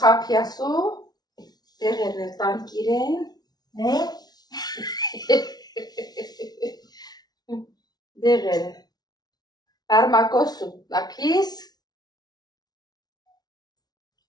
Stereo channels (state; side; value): late; right; 0.19 ms